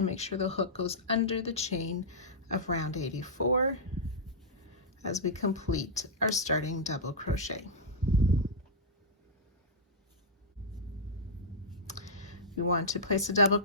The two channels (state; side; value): normal; both; correlation -0.09